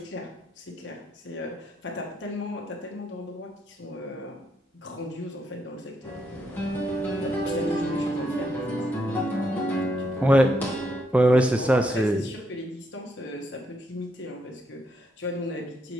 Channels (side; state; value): both; normal; correlation 0.77